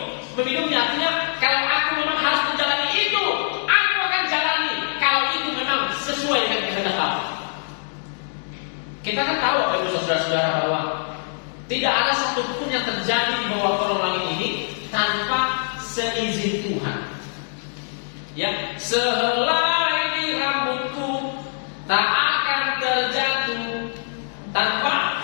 meminumnya, artinya kalau aku memang harus menjalani itu, aku akan jalani. Kalau itu memang sesuai dengan kehendak Allah. Kita kan tahu Bapak Ibu Saudara-saudara bahwa tidak ada satupun yang terjadi di bawah kolong langit ini tanpa seizin Tuhan. Ya, sehelai di rambutku tak akan terjatuh tanpa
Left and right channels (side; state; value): right; silent; digital silence